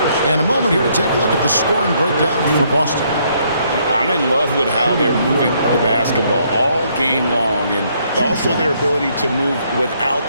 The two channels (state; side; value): inverted; both; correlation -0.70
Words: And a moment here to take a look at the scoring breakdown for Boston. I'm in love with how they're moving the basketball all game long, and also their ability to move without